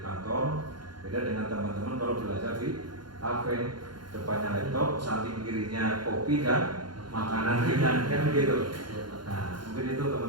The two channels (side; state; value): left; late; 0.71 ms